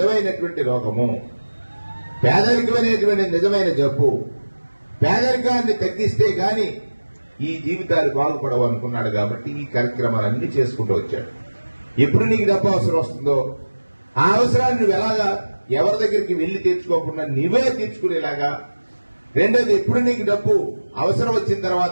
రోగము, పేదరికం అనేటువంటి నిజమైన జబ్బు, పేదరికాన్ని తగ్గిస్తే గాని ఈ జీవితాలు బాగుపడవు అనుకున్నాడు. కాబట్టి ఈ కార్యక్రమాలన్నీ చేసుకుంటూ వచ్చాడు. ఎప్పుడు నీకు డబ్బు అవసరం వస్తుందో ఆ అవసరాన్ని నువ్వు ఎలాగా ఎవరి దగ్గరికి వెళ్లి తీర్చుకోకుండా నువ్వే తీర్చుకునేలాగా, రెండోది ఎప్పుడు నీకు డబ్బు అవసరం వచ్చిన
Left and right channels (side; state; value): both; inverted; correlation -1.00